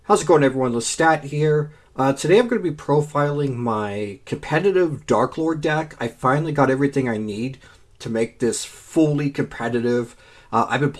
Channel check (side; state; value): both; identical; correlation 1.00